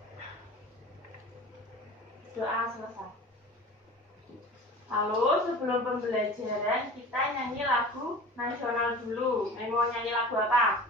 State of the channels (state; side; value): normal; both; correlation 0.38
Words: Doa selesai. Lalu sebelum pembelajaran kita nyanyi lagu nasional dulu. Mau nyanyi lagu apa?